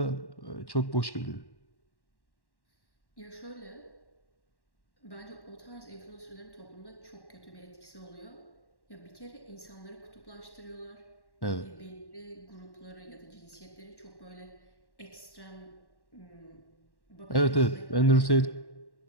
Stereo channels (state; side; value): late; right; 1.1 ms